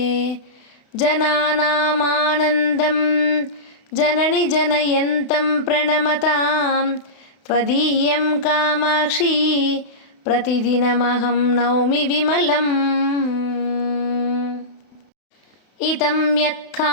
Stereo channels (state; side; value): late; right; 32 ms